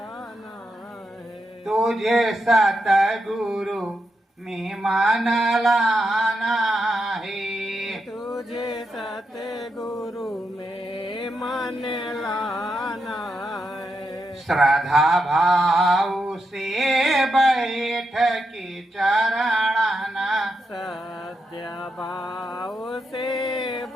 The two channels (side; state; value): both; normal; correlation 0.84